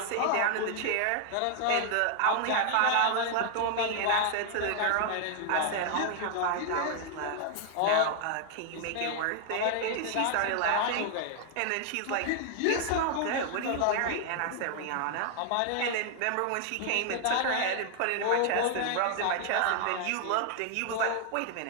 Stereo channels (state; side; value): different; both; correlation 0.00